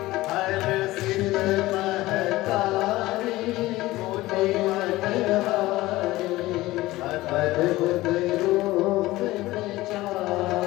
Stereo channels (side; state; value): right; quieter; 18.1 dB